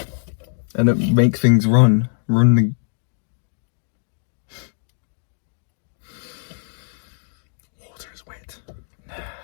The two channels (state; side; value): silent; right; digital silence